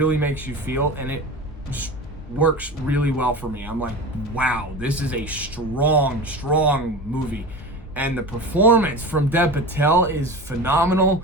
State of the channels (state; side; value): normal; both; correlation 0.30